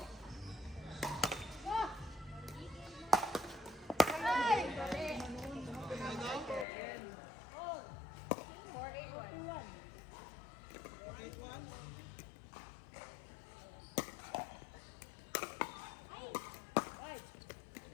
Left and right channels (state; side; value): drops out; right; at 6.7 s